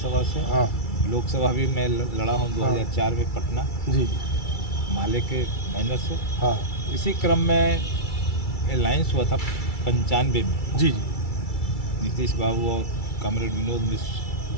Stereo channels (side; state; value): right; late; 2.3 ms